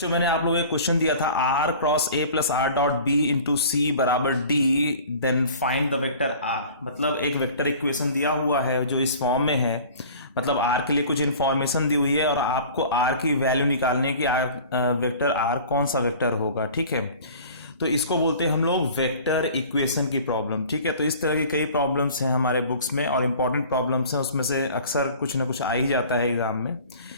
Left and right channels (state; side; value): inverted; both; correlation -0.44